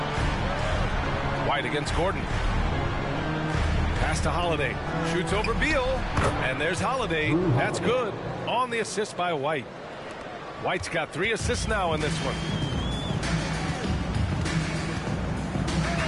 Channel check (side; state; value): both; identical; correlation 1.00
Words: White against Gordon. Pass to Holiday. Shoots over Beal. And there's Holiday. That's good. On the assist by White. White's got 3 assists now in this one.